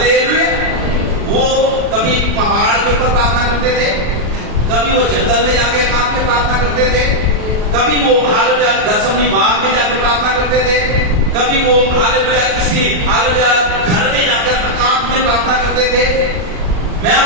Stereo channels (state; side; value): late; left; 39 ms